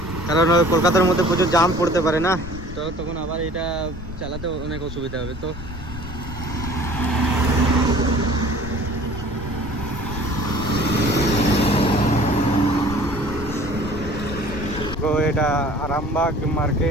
কারণ কলকাতার মধ্যে প্রচুর জাম পড়তে পারে না, তো তখন আবার এটা চালাতে অনেক অসুবিধা হবে। তো এটা আরামবাগ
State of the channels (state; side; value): noise; left; rumble, 11 dB below the sound